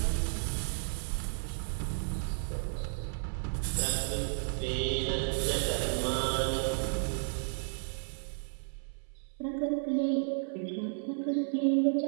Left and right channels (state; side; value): silent; left; 56 dB below the other